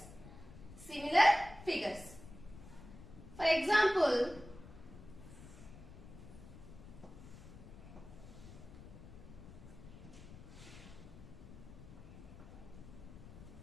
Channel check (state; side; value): noise; left; rumble, 15 dB below the sound